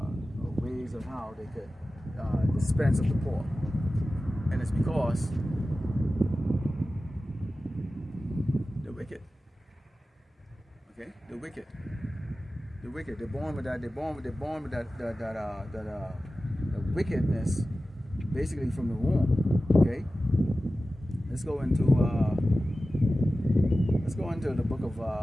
ways of how they could dispense of the poor? And it's because the wicked. Okay, the wicked. The wicked. They're born with that. The wickedness, basically from the womb. Okay. Let's go into the book of.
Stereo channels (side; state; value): both; normal; correlation 0.95